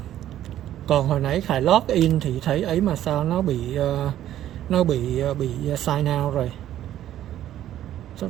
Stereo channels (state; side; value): quieter; left; 12.2 dB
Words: Còn hồi nãy Khải log in thì thấy ấy mà sao nó bị sign out rồi.